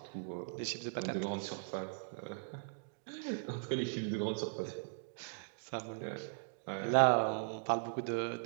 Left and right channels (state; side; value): silent; left; digital silence